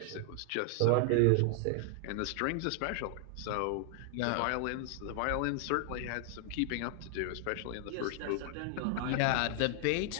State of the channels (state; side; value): different; both; correlation 0.00